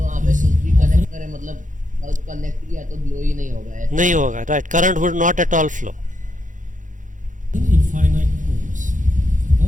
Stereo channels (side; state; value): left; late; 0.37 ms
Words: वहाँ पे कुछ भी connect करे मतलब connect किया तो glow ही नहीं होगा ऐसा. नहीं होगा, right? Current would not at all flow. infinite ohms.